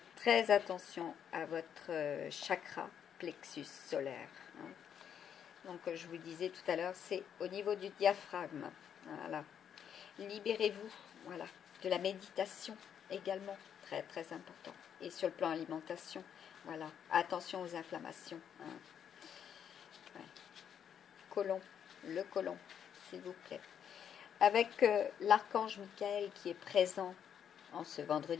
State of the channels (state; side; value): quieter; right; 8.6 dB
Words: très attention à votre chakra plexus solaire. Donc, je vous disais tout à l'heure, c'est au niveau du diaphragme. Voilà. Libérez-vous, voilà, de la méditation également, très très important. Et sur le plan alimentation, voilà, attention aux inflammations. Ouais. Côlon, le côlon, s'il vous plaît. Avec l'archange Michael qui est présent en ce